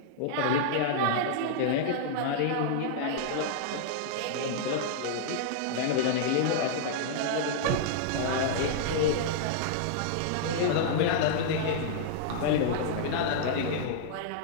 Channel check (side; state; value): both; different; correlation -0.01